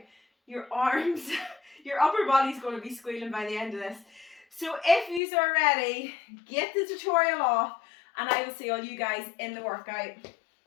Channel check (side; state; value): right; drops out; at 5.2 s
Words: Your arms, your upper body's going to be squealing by the end of this. So if you are ready, get the tutorial off, and I will see all you guys in the workout.